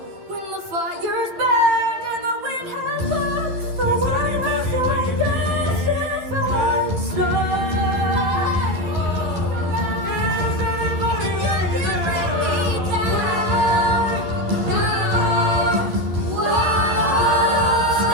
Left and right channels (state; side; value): late; left; 11 ms